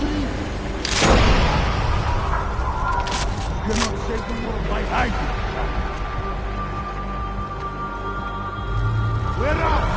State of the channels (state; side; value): identical; both; correlation 1.00